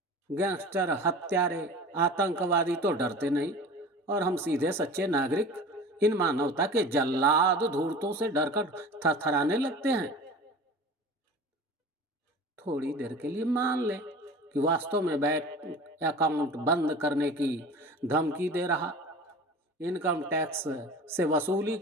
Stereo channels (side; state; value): both; normal; correlation 0.38